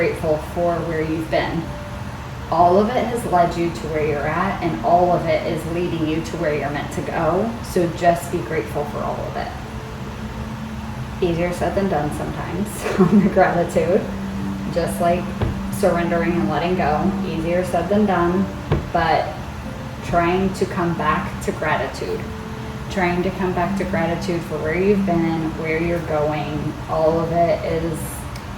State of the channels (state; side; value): identical; both; correlation 1.00